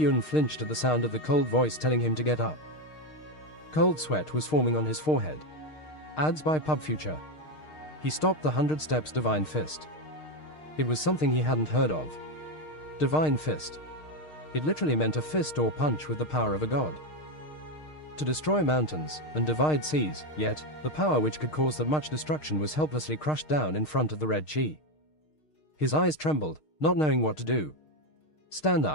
flinched at the sound of the cold voice telling him to get up. Cold sweat was forming on his forehead. Ads by Pub Future. He stopped the 100 Steps Divine Fist. It was something he hadn't heard of. Divine Fist. It literally meant a fist or punch with the power of a god. To destroy mountains and divide seas, yet the power which could cause that much destruction was helplessly crushed down in front of the red chi. His eyes trembled, not knowing what to do. "Stand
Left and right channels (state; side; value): late; right; 6.5 ms